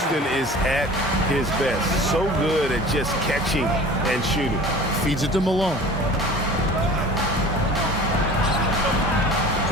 is at his best. So good at just catching and shooting. Feeds it to Malone.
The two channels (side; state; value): both; normal; correlation 0.42